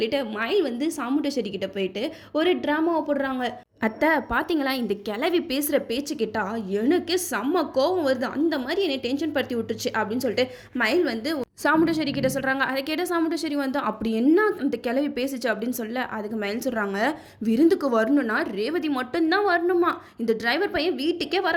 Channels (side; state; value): both; identical; correlation 1.00